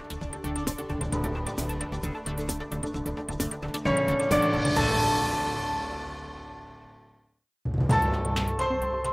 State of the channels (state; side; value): identical; both; correlation 1.00